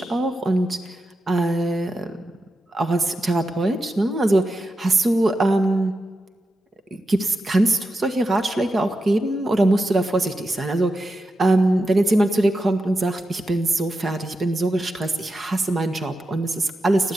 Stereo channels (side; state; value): both; normal; correlation 0.89